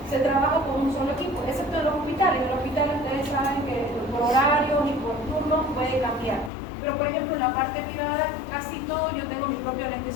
se trabaja con un solo equipo, excepto en los hospitales. En los hospitales ustedes saben que por horarios y por turnos puede cambiar. Pero por ejemplo en la parte privada, casi todo, yo tengo mi propio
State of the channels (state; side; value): drops out; right; at 6.5 s